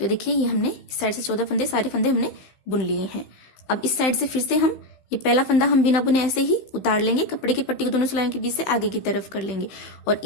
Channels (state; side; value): late; right; 15 ms